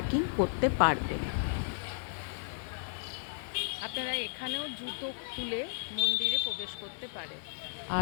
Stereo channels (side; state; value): right; silent; digital silence